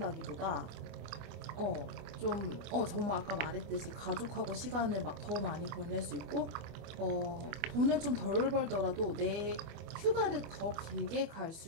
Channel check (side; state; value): left; late; 24 ms